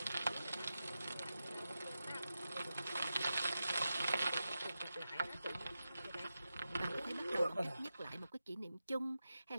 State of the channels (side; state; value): both; inverted; correlation -0.91